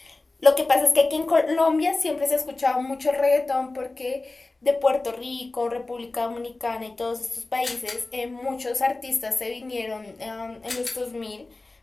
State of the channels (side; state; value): right; quieter; 3.2 dB